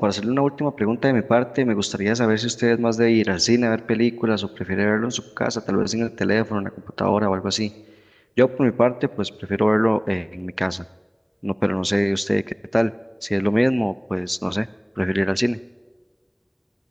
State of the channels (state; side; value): identical; both; correlation 1.00